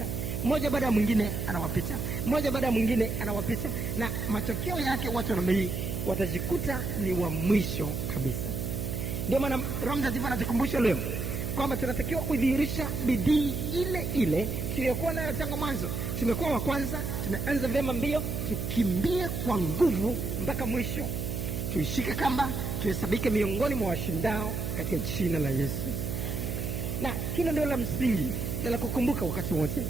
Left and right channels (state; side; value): noise; right; hum, 3 dB below the sound